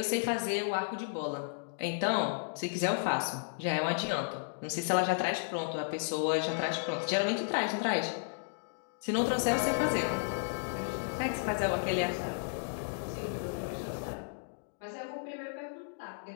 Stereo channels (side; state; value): right; silent; digital silence